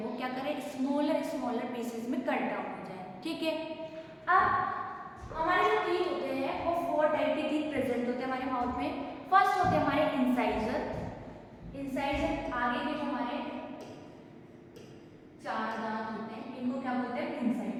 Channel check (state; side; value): identical; both; correlation 1.00